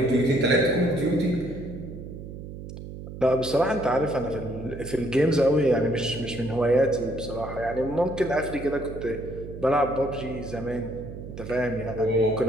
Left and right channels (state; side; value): noise; right; hum, 11 dB below the sound